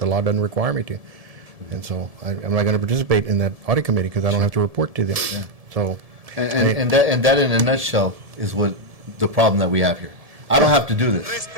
law doesn't require me to. And so I'm not going to participate in that audit committee, because I don't have to report to them. So, And that in a nutshell is what the problem that we have here. I don't have to do this.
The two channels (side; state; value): left; late; 1.7 ms